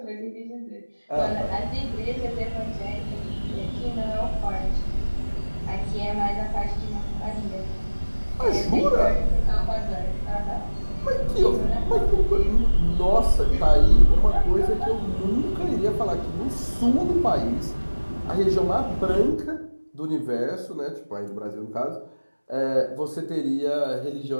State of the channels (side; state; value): both; inverted; correlation -1.00